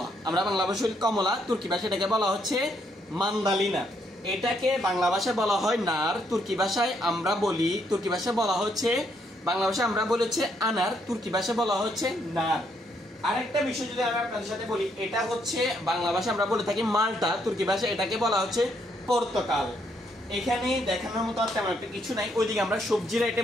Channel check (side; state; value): both; normal; correlation 0.73